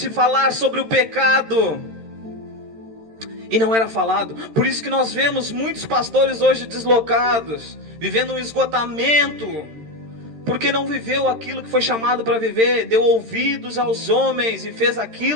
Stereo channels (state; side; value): late; left; 13 ms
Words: falar sobre o pecado. E não era falado. Por isso que nós vemos muitos pastores hoje deslocados, vivendo um esgotamento, porque não viveu aquilo que foi chamado para viver, deu ouvidos aos homens e fez